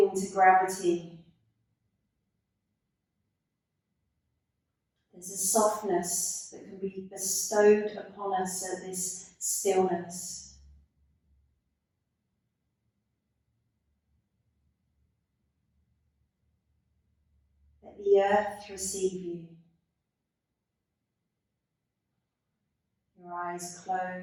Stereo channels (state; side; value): identical; both; correlation 1.00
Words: to gravity. There's a softness that can be bestowed upon us at this stillness. Let the earth receive you. Your eyes